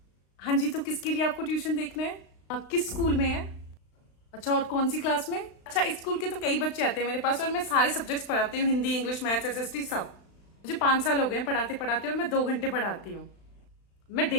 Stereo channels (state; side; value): late; right; 35 ms